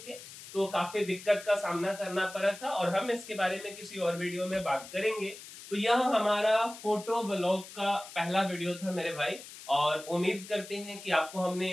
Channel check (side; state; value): left; noise; hiss, 15 dB below the sound